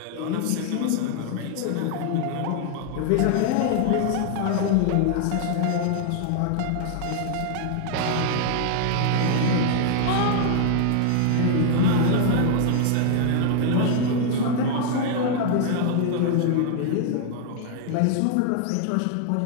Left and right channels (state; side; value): different; both; correlation -0.01